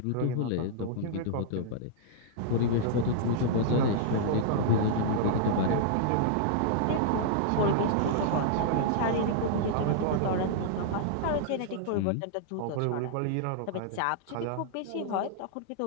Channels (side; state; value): both; different; correlation -0.01